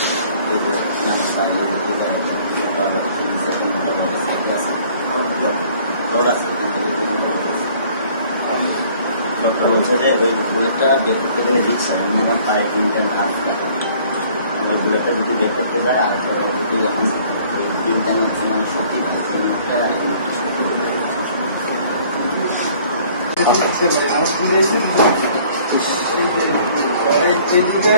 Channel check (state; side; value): inverted; both; correlation -0.56